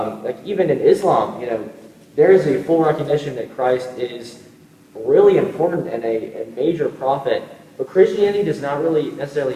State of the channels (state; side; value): identical; both; correlation 1.00